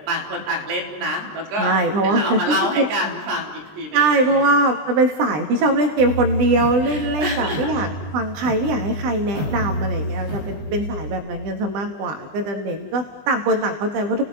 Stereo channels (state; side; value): late; left; 20 ms